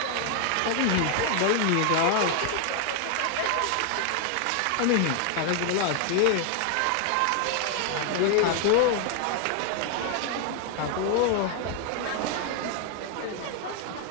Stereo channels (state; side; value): different; both; correlation 0.00